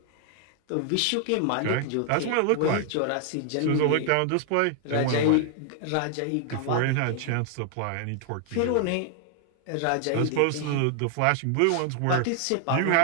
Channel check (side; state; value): both; different; correlation 0.00